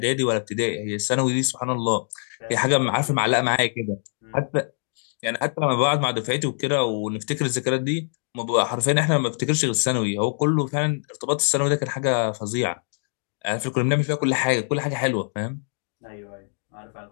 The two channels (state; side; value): silent; right; digital silence